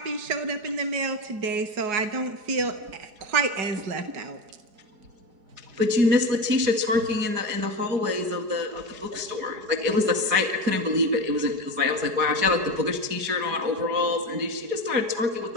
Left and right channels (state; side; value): late; left; 4.8 ms